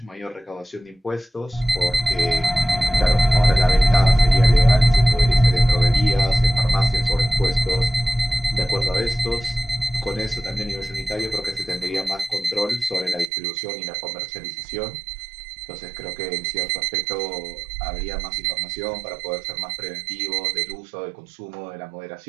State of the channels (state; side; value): drops out; left; at 13.2 s